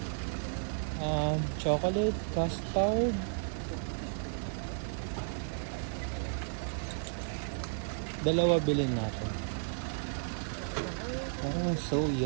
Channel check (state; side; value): silent; left; digital silence